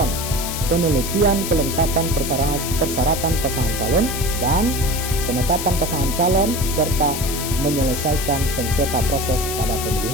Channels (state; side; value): noise; left; hiss, 5 dB below the sound